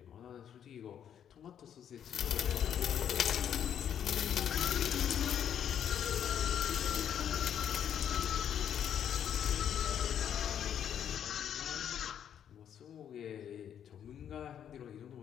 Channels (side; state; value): right; quieter; 9.2 dB